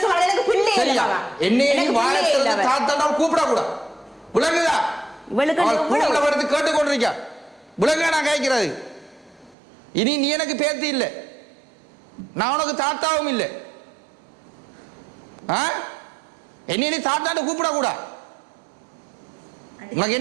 சொல்ற? எனக்கு பிள்ளை இல்ல. என்ன வாழத்துல தாத்தா கூப்பிட கூட உலகுதா? இவளுக்கு வருது கேட்டு கொண்டிருக்கா. உலக நான் கேட்கிறது. இனி நீ எனக்கு பேத்தி இல்லை, நான் உனக்கு தாத்தாவும் இல்லை. என்ன நீ தாத்தான்னு கூப்பிட கூட. உனக்கு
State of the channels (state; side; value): drops out; left; at 9.6 s